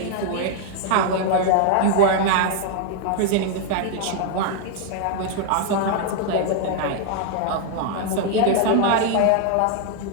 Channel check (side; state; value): both; different; correlation 0.00